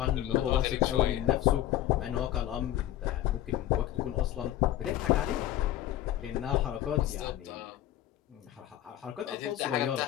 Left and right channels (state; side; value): quieter; right; 13.2 dB